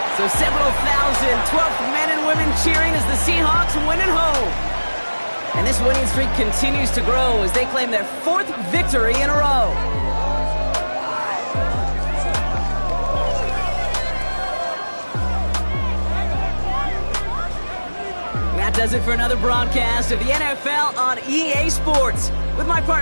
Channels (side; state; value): both; inverted; correlation -1.00